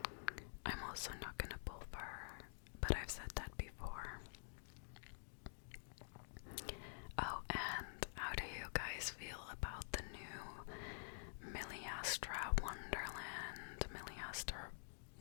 I'm also not gonna pull for her, but I've said that before. Oh, and how do you guys feel about the new Miliastra Wonderland? Miliastra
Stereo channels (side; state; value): right; silent; digital silence